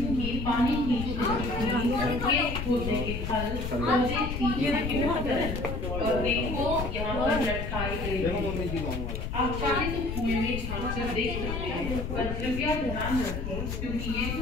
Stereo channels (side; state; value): left; noise; rumble, 4 dB below the sound